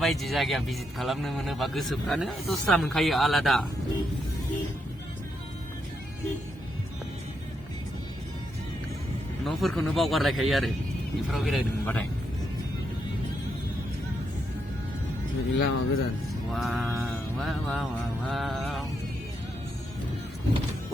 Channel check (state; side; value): normal; both; correlation 0.80